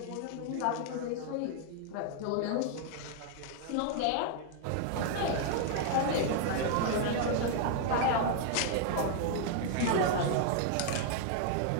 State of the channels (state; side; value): different; both; correlation 0.00